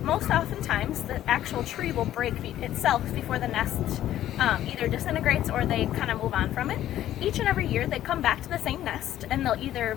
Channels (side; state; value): right; quieter; 12.6 dB